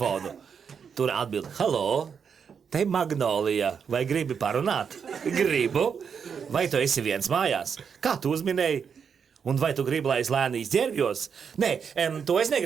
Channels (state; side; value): quieter; left; 6.7 dB